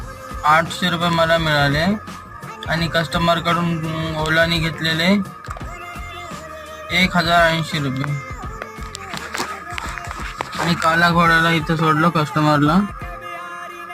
रुपये मला मिळाले आणि कस्टमरकडून ओलाने घेतलेले 1080 रुपये. आणि कालाघोडाला इथं सोडलं कस्टमरला.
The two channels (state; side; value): identical; both; correlation 1.00